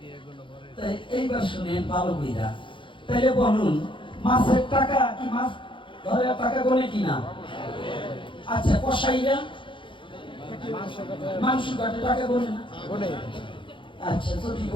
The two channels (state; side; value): late; right; 0.24 ms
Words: তাই এইবার শুনেন ভালো কইরা। তাইলে বলুন, মাছের টাকা কি মাছ ধরে টাকা গোনে কিনা? আচ্ছা, কসাইরা মাংস কাটে টাকা গোনে না? আচ্ছা, যদি